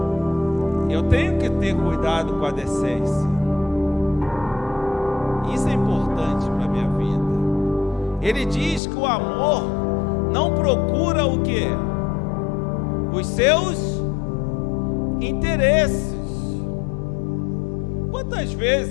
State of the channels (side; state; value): right; drops out; at 8.8 s